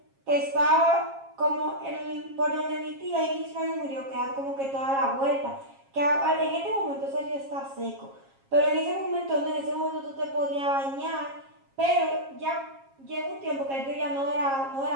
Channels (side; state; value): left; late; 7.4 ms